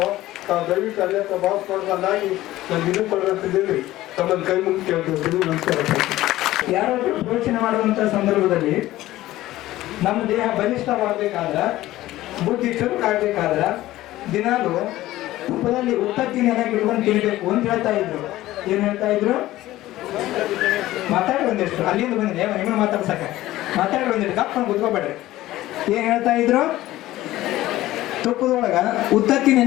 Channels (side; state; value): right; quieter; 15.9 dB